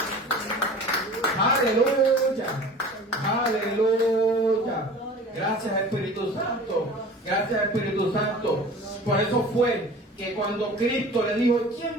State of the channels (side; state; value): both; normal; correlation 0.41